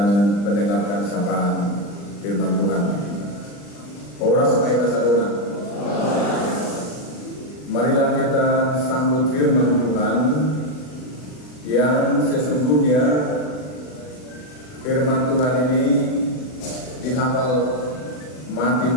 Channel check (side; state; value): right; late; 40 ms